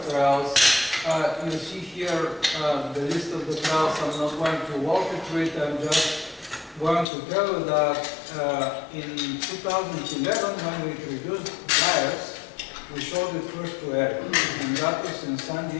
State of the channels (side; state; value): right; drops out; at 7.1 s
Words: trials. You see here the list of the trials. I'm not going to walk you through it. I'm just going to tell you that in 2011, when we introduced dryers, we showed it first to Eric. And that was in San